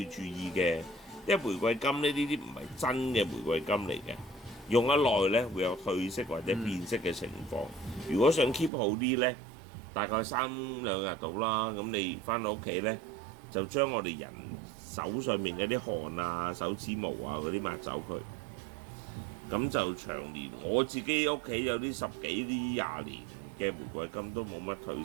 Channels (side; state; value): left; drops out; at 8.7 s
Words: 注意嘅。因為玫瑰金呢啲唔係真嘅玫瑰金嚟嘅，用得耐呢會有褪色或者變色嘅情況。如果想 keep 好啲呢，大概3-2日到啦。咁你翻到屋企呢，就將我哋人手上面嗰啲汗啊、手指毛啊嗰啲抹走佢。咁就長年，我自己屋企有啲10幾、20年嘅玫瑰金都冇乜褪